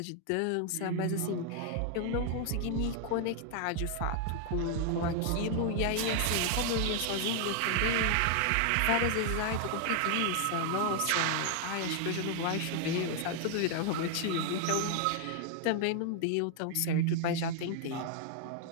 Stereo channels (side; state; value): both; different; correlation 0.00